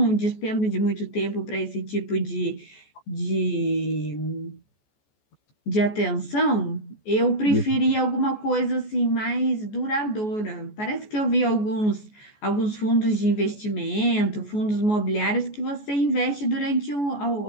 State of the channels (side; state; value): right; late; 14 ms